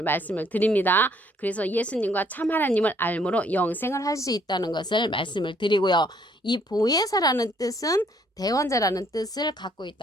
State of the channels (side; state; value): both; normal; correlation 0.65